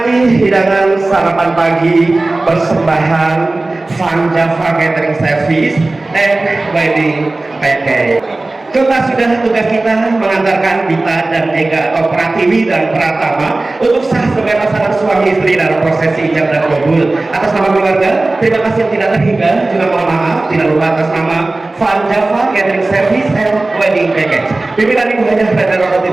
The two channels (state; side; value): quieter; left; 3.0 dB